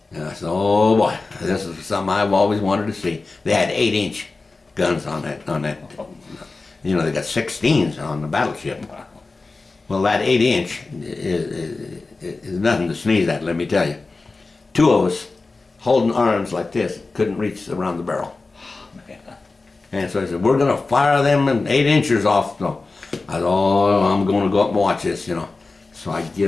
And I said, oh boy, this is something I've always wanted to see. They had 8-inch guns on that. They got 16s on the battleship. Well, that 8-inch is nothing to sneeze at, let me tell you. Two of us holding arms like this, couldn't reach around the barrel. And so I said, we're going to fire them 8-inchers off. So I thought, oh, I'm going to go up and watch this, So I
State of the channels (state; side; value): quieter; right; 3.7 dB